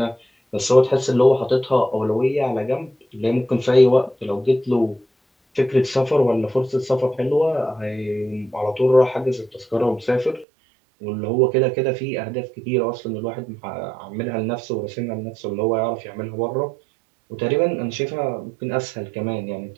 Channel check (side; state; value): left; drops out; at 10.5 s